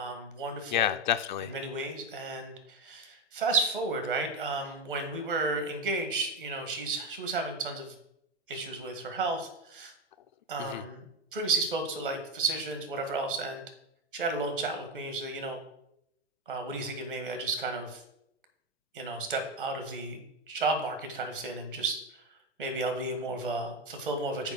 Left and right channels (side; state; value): both; normal; correlation 0.13